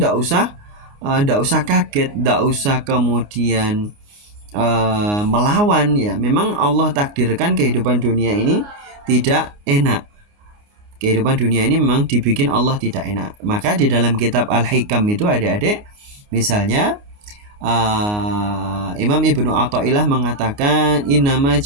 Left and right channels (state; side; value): late; left; 29 ms